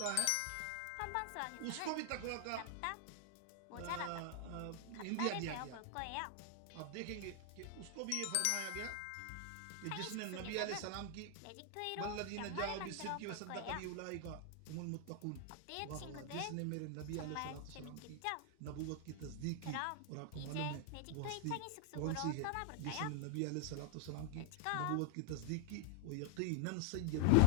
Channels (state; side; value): different; both; correlation 0.00